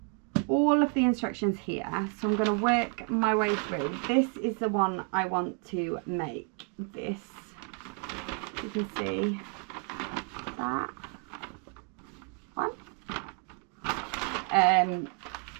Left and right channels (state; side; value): quieter; left; 36.0 dB